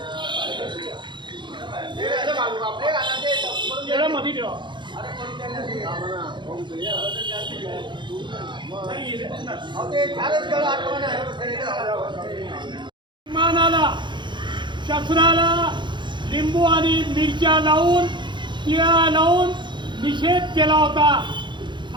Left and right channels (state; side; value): late; left; 0.23 ms